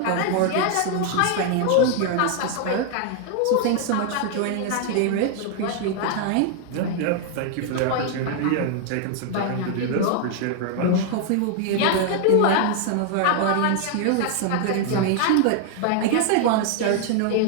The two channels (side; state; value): both; different; correlation 0.00